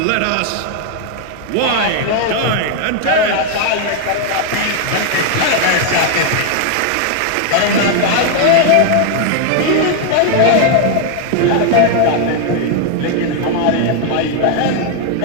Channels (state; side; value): different; both; correlation 0.00